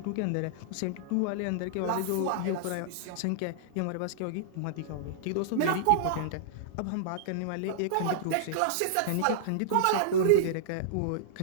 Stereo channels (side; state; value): both; different; correlation -0.02